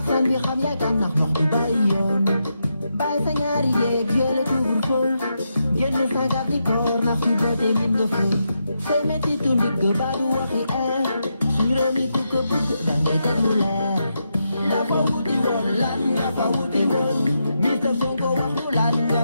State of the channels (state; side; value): inverted; both; correlation -0.84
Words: bi xam yaay kan ndax wax du bàyyi yoon bàyyi sa ñaari jéeg yële couvre-feu génn sa gab di koor ndax su bëtee min nga fay say metti tu nit ga baa du waxi su réew mi ku ko bëgg da ngay teg lu leer la fa wuti woon lan nga fa wuti woon Mr. Sonko wax nu lan nga